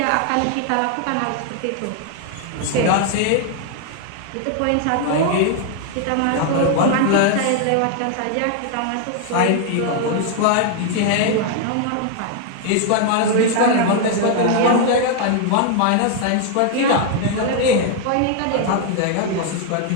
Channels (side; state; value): both; different; correlation 0.00